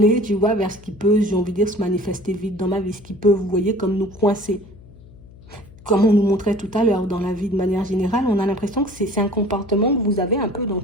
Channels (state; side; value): noise; left; hum, 21 dB below the sound